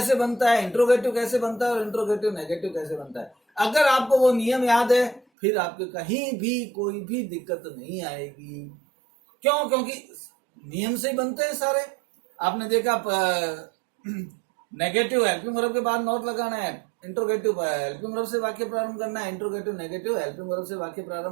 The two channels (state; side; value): drops out; left; at 5.2 s